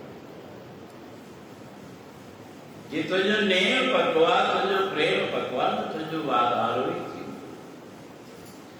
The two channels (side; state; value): both; identical; correlation 1.00